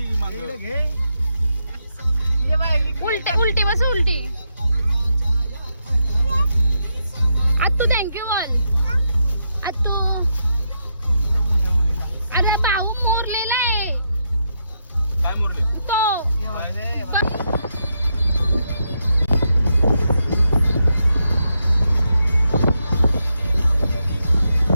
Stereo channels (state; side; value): inverted; both; correlation -0.81